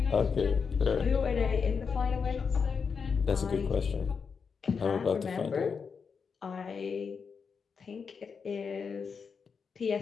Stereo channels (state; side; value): quieter; right; 5.8 dB